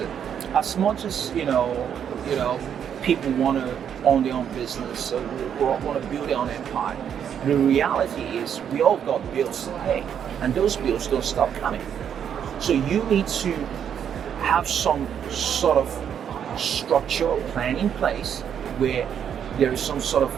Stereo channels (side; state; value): left; quieter; 8.5 dB